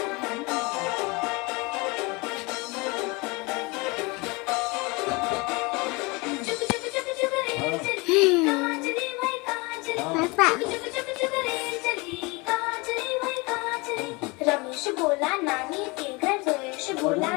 वही कांचली। रमेश बोला नानी के घर, बोला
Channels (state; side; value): quieter; right; 26.5 dB